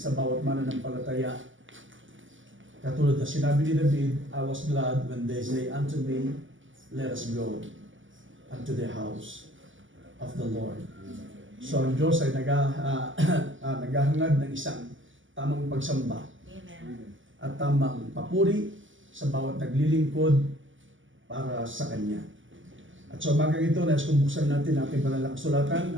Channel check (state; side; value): late; left; 0.57 ms